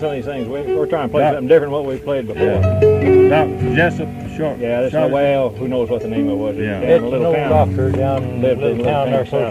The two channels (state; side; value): identical; both; correlation 1.00